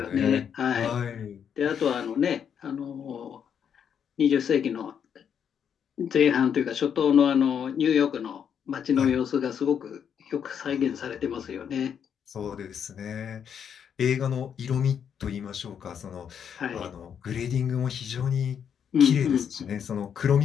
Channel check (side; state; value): right; quieter; 8.0 dB